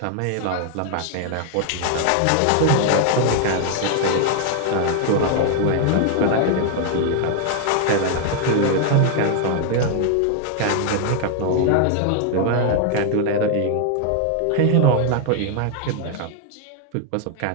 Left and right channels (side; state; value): both; different; correlation 0.00